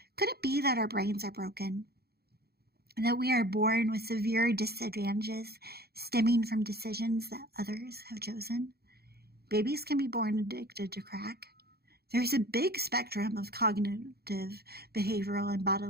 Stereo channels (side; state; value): left; late; 0.46 ms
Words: Could it be that our brains are broken? That we are born with severe disadvantages stemming from decisions that others have chosen? Babies can be born addicted to crack. There's a big spectrum of cognitive, behavioral, and